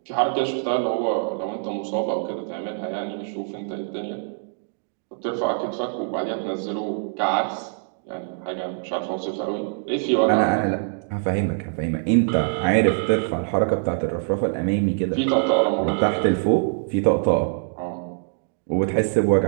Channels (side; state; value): left; silent; digital silence